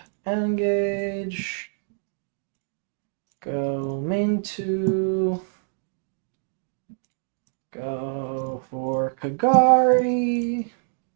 Engage. Go main 2. Go for Kagari.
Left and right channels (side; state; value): left; silent; digital silence